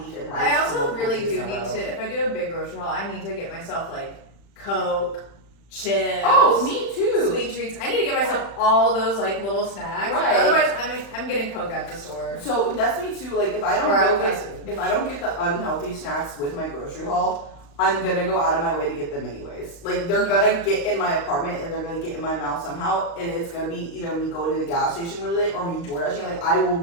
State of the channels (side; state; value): right; late; 35 ms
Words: and rice. I also really do in a need row. to, if I do a big grocery haul, I need to get myself like Coke, chips. Oh, me too. Sweet treats. I need to get myself all those like little snacks. Right. Otherwise, I'm getting Coke at the store. So that's me too. Like if I don't get the unhealthy snacks with my grocery haul, I'm gonna go out of my way to get them anyways. Like they're gonna get in my apartment and they're gonna get in my mouth somehow, and it's gonna be either me going to the gas station really late or me door dashing. Like